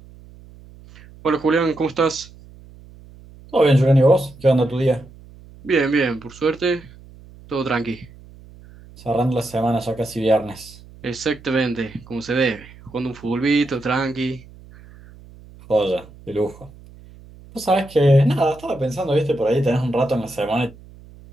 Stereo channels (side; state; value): right; noise; hum, 21 dB below the sound